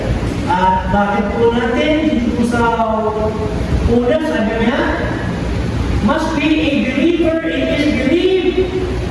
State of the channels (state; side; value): identical; both; correlation 1.00